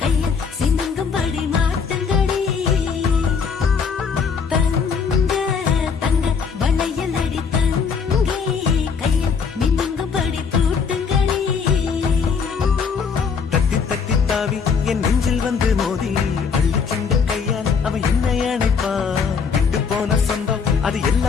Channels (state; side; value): quieter; right; 5.8 dB